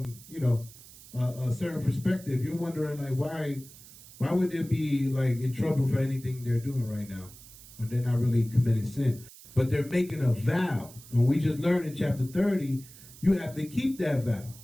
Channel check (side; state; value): right; noise; hiss, 19 dB below the sound